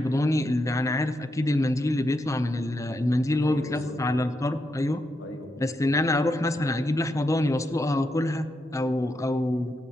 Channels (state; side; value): normal; both; correlation 0.83